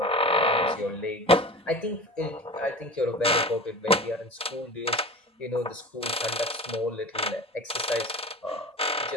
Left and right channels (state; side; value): normal; both; correlation 0.34